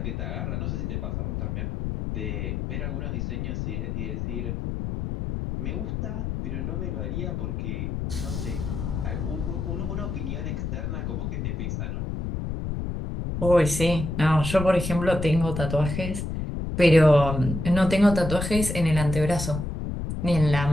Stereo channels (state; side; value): noise; left; rumble, 3 dB below the sound